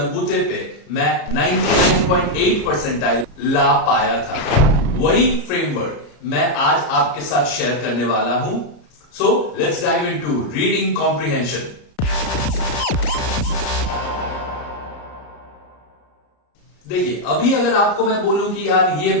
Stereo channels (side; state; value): right; late; 34 ms